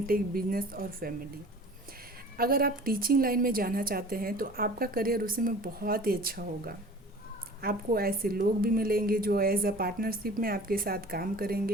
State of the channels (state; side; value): normal; both; correlation 0.44